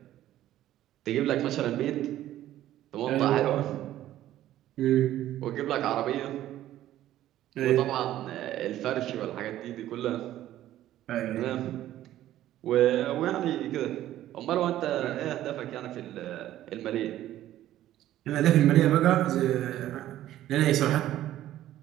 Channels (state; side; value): quieter; left; 13.3 dB